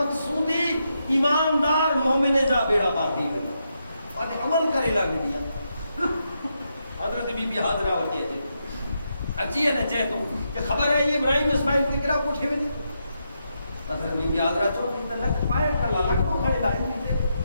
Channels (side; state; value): both; inverted; correlation -0.83